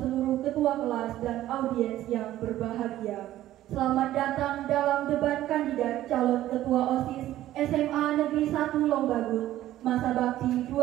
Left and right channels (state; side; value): quieter; left; 13.9 dB